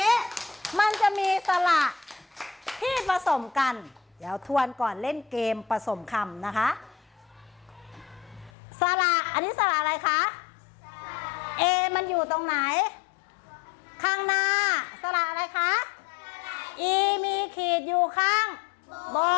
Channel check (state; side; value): drops out; right; at 8.5 s